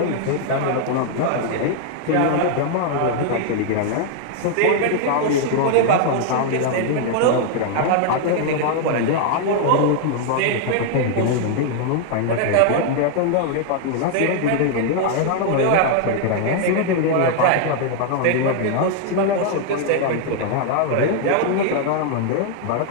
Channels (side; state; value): both; different; correlation 0.00